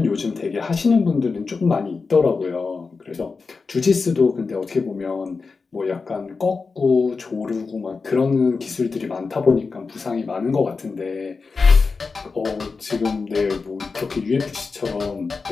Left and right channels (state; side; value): quieter; right; 4.5 dB